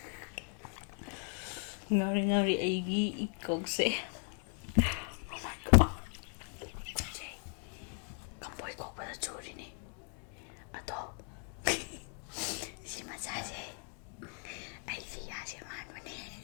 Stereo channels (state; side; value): quieter; right; 39.8 dB